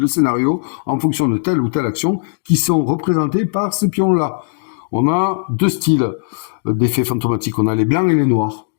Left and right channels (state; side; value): silent; right; 68 dB below the other